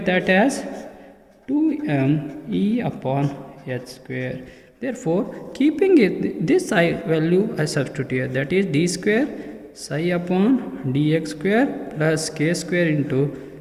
that as 2m E upon h square. Therefore, keeping it this psi value I substitute here, that is d square psi upon dx square plus k square into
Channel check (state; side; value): identical; both; correlation 1.00